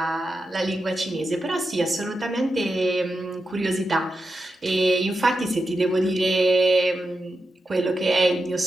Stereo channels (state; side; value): normal; both; correlation 0.89